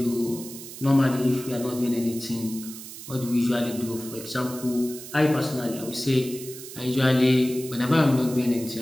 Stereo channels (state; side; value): noise; right; hiss, 13 dB below the sound